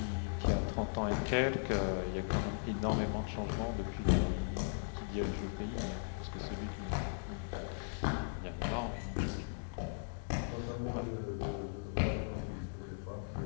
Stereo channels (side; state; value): right; silent; digital silence